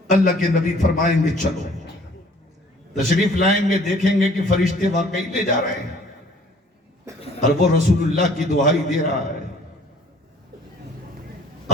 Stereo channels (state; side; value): normal; both; correlation 0.55